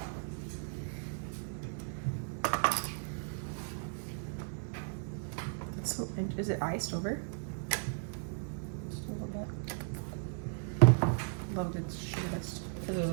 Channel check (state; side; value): silent; left; digital silence